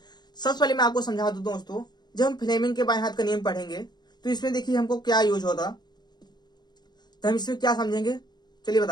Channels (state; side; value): late; right; 0.21 ms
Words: सबसे पहले मैं आपको समझा दूं दोस्तों, जब हम फ्लेमिंग के बाएं हाथ का नियम पढ़ेंगे तो इसमें देखिए हमको क्या यूज होता, तो हम इसमें क्या समझेंगे चलिए